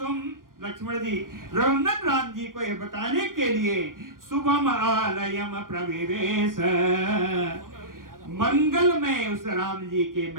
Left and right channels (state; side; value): late; left; 0.90 ms